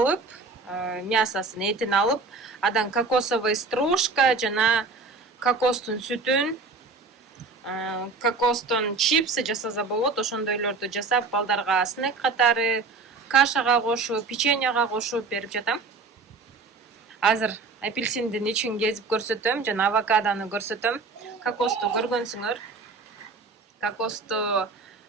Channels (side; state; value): left; quieter; 4.1 dB